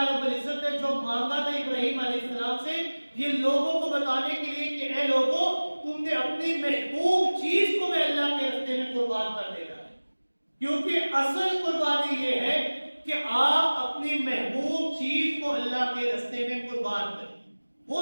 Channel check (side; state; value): both; inverted; correlation -1.00